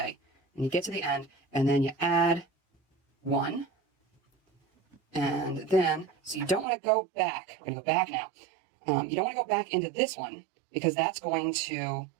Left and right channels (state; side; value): drops out; left; at 6.7 s